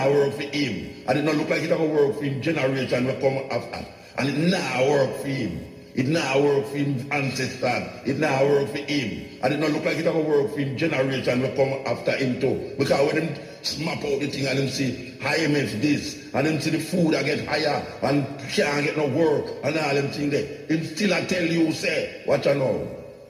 work for him. And it not look like it going to work for him generation will come after. And it now work for him. It now work for him ancestors. It now work for him. And it not look like it going to work for him generation will come after him too. Because when him smap out the thing and him see IMF this, and him see the food I get higher and can't get no work and all them things there, him still I tell you say, watch out now.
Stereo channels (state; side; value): identical; both; correlation 1.00